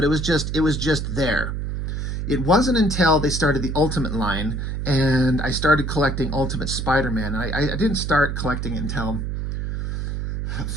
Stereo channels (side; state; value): right; noise; hum, 3 dB below the sound